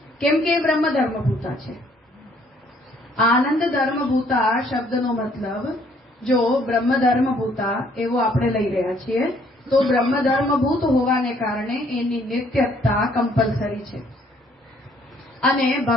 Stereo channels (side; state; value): both; normal; correlation 0.64